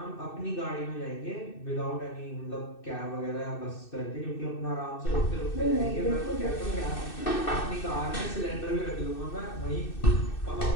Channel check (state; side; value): late; right; 2.6 ms